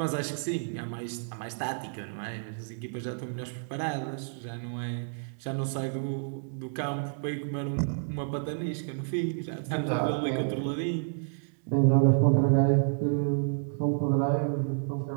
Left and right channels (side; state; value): left; silent; digital silence